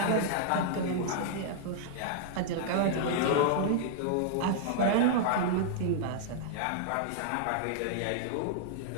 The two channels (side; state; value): both; different; correlation -0.01